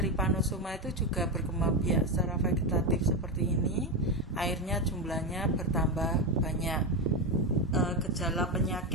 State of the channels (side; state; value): both; normal; correlation 0.12